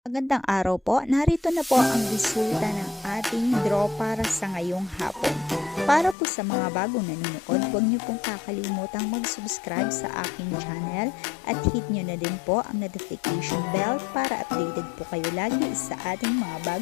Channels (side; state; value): right; drops out; at 6.2 s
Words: Magandang araw po. Narito na po ang resulta ng ating draw para sa ngayong hapon. Para po sa mga bagong nanonood, huwag niyo pong kakalimutang mag-subscribe sa aking channel at hit niyo na din po ang notification bell para updated po kayo lagi sa ating mga